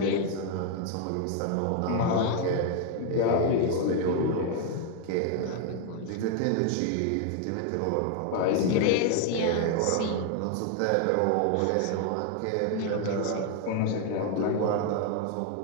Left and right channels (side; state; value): both; different; correlation 0.00